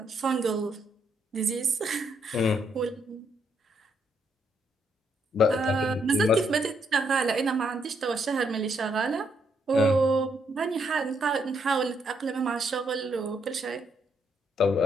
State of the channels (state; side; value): normal; both; correlation 0.75